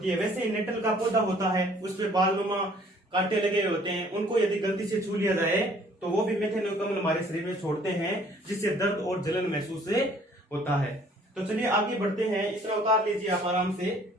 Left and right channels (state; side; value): normal; both; correlation 0.57